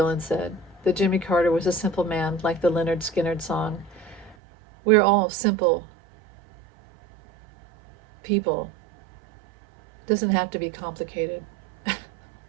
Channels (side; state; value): left; drops out; at 4.4 s